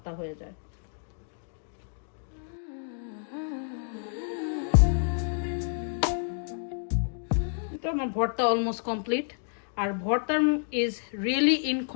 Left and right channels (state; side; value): silent; right; digital silence